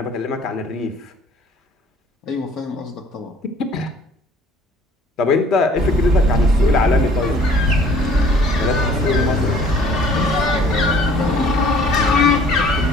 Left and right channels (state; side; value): normal; both; correlation 0.54